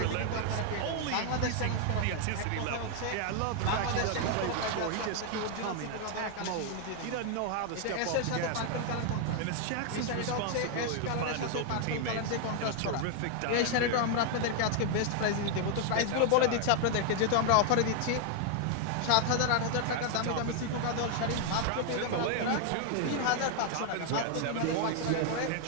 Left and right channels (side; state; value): both; different; correlation 0.00